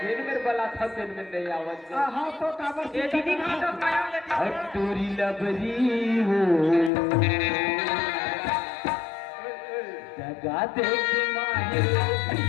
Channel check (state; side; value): drops out; right; at 6.9 s